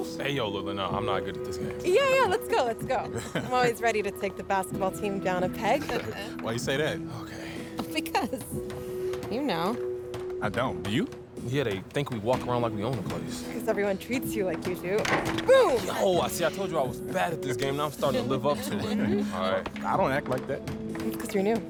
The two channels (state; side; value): identical; both; correlation 1.00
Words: Hey, yo, Lila, no, I'm not good at this game. Yeah, let's go, let's go. I'm always ready to take the basketball team down a peg. Why you say that? Okay. Because, you know. I don't. Do you? Yeah, they think we walk around like we own the place. Because everyone treats you like you do. Boom! Yo, I told you I was bad at this game. Now I'm starting to live up to it. All right. I don't act like that. It's because you're new.